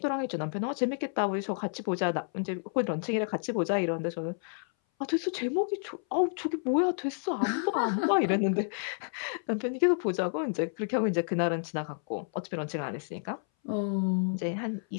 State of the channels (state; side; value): silent; right; 58 dB below the other